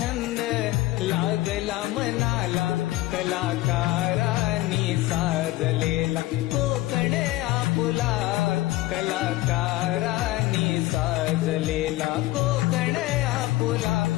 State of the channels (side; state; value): right; quieter; 17.6 dB